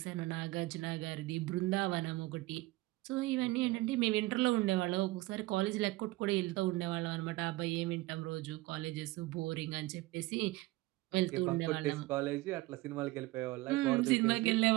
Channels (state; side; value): quieter; left; 20.2 dB